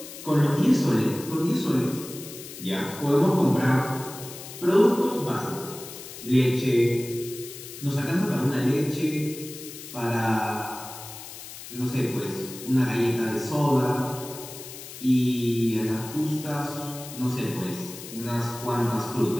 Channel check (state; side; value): noise; left; hiss, 13 dB below the sound